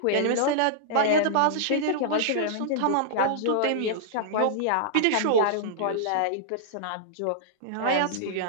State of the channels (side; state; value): both; different; correlation -0.02